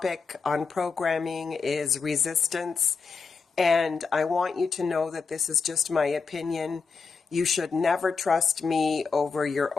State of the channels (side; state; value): right; quieter; 5.1 dB